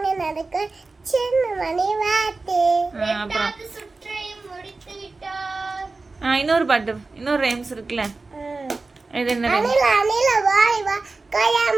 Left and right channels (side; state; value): left; quieter; 3.7 dB